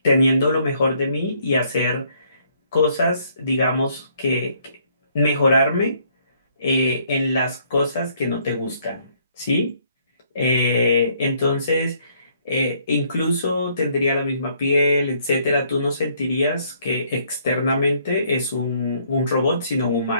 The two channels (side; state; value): both; inverted; correlation -0.66